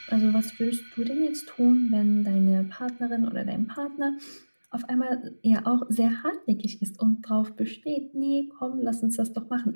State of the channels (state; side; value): inverted; both; correlation -1.00